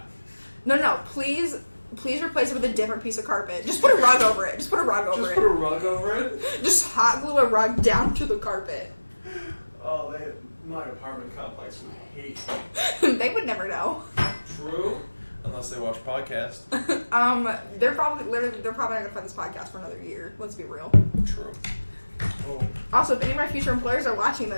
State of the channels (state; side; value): inverted; both; correlation -1.00